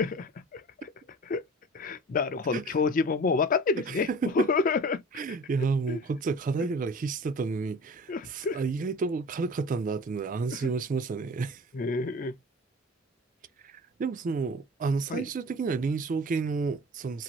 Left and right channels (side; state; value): both; normal; correlation 0.40